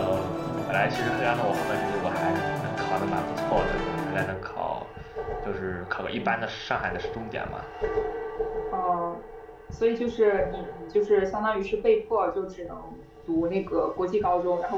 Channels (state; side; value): identical; both; correlation 1.00